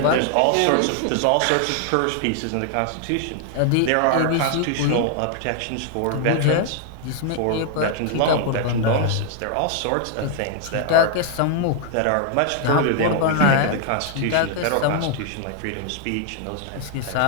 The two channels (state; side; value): different; both; correlation 0.00